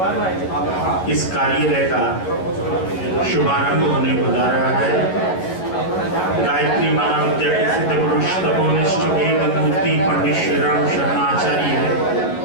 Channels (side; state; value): right; late; 11 ms